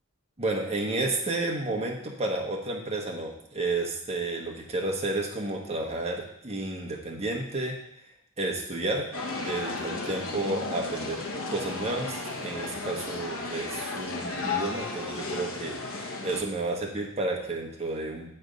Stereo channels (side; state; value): both; normal; correlation 0.24